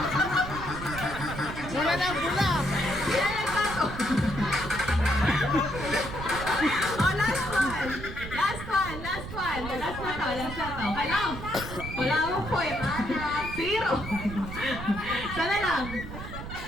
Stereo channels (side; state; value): right; noise; rumble, 9 dB below the sound